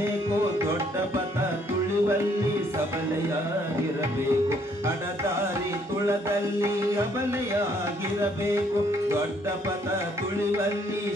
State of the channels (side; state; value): both; normal; correlation 0.66